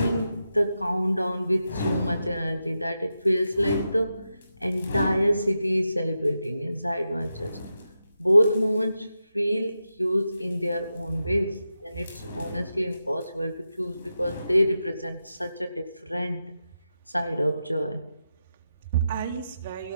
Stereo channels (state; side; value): inverted; both; correlation -0.89